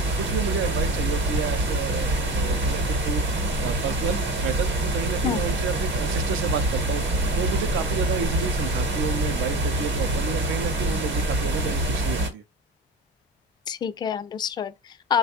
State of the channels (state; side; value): normal; both; correlation 0.28